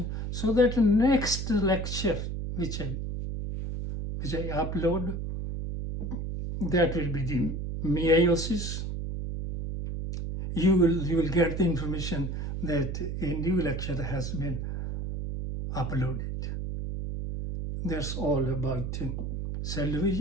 so that next lecture which I upload, that will be the meiosis. You will get the information that a new lecture has been uploaded. That's all about cell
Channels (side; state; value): right; noise; hum, 4 dB below the sound